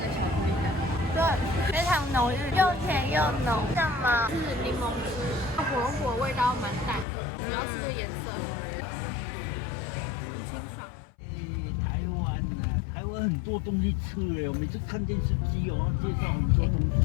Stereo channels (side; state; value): right; drops out; at 7.1 s